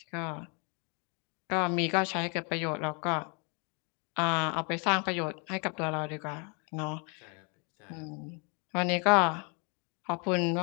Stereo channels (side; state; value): right; quieter; 34.8 dB